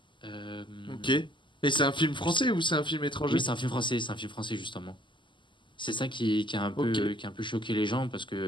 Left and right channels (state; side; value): late; right; 0.24 ms